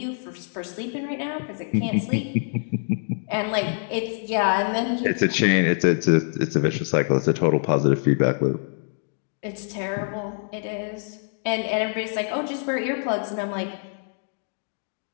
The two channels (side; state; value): right; silent; digital silence